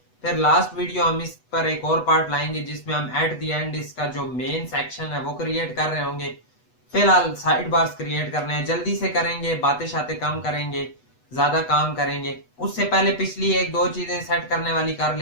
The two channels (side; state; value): right; late; 8.1 ms